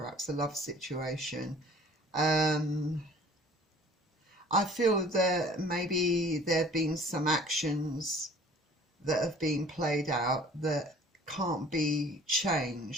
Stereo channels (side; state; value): both; normal; correlation 0.51